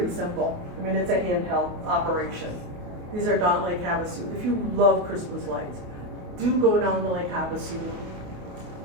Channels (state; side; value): late; left; 28 ms